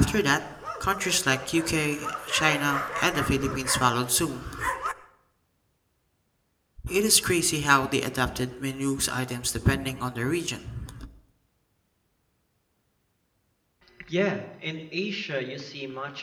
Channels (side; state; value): both; identical; correlation 1.00